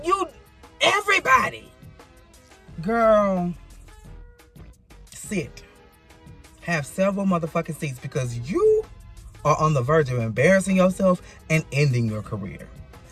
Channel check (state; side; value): identical; both; correlation 1.00